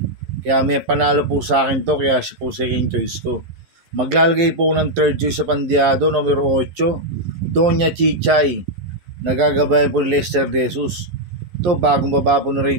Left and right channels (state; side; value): late; left; 11 ms